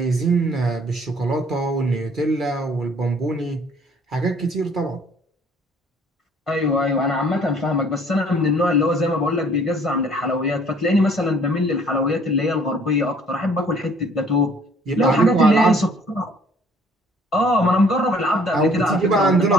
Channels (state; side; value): normal; both; correlation 0.57